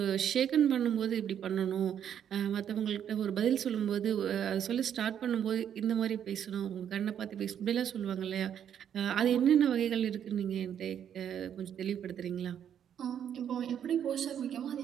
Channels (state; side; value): quieter; left; 9.2 dB